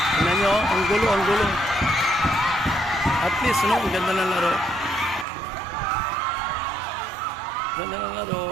Tingnan nyo. Ang gulo, ang gulo. At least, no? Ang ganda ng laro. Ganda ng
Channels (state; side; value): drops out; left; at 5.2 s